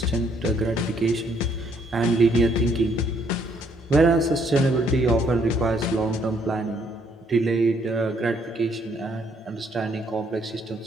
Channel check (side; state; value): both; normal; correlation 0.68